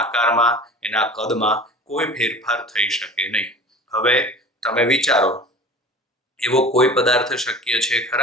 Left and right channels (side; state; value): both; normal; correlation 0.40